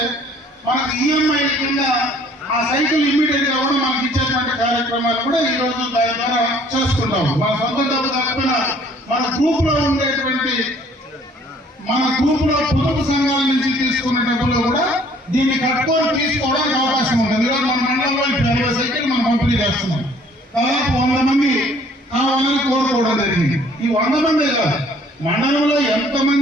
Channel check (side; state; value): both; normal; correlation 0.58